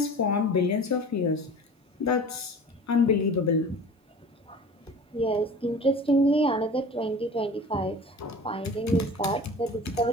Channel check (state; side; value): normal; both; correlation 0.39